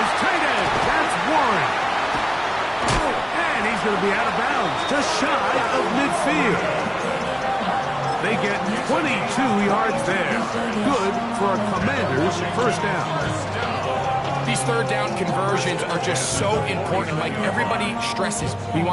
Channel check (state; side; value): identical; both; correlation 1.00